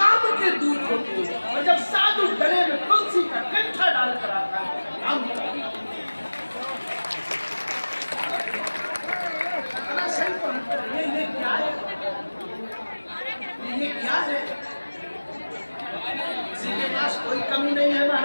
के दूत होते हो, और जब साधु गले में तुलसी का कंठा डाल कर आता है काम ये क्या है? ये क्या है? किसी के पास कोई कमी नहीं है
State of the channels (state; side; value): inverted; both; correlation -1.00